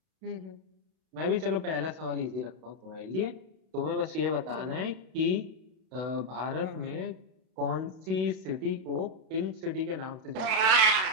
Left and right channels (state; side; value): late; left; 32 ms